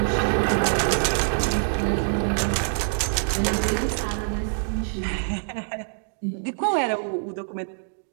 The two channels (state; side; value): silent; left; digital silence